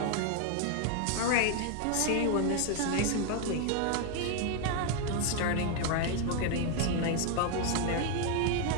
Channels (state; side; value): different; both; correlation 0.00